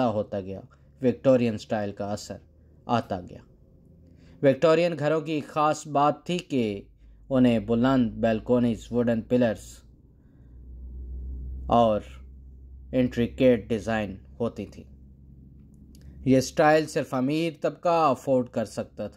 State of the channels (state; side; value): identical; both; correlation 1.00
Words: ہوتا گیا وکٹورین سٹائل کا اثر آتا گیا۔ وکٹورین گھروں کی خاص بات تھی کہ انہیں بلند بیلکونیز، ووڈن پلرز اور انٹریکیٹ ڈیزائن ہوتی تھی۔ یہ سٹائل صرف امیر طبقہ افورڈ کر سکتا